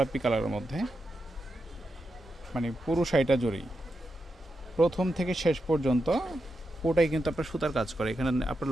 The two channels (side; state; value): both; normal; correlation 0.87